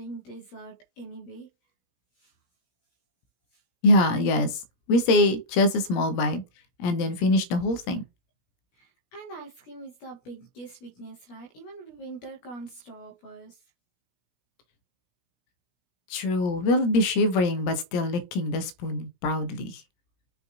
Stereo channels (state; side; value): late; right; 16 ms